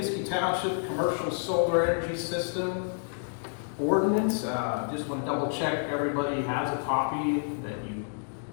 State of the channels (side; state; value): right; silent; digital silence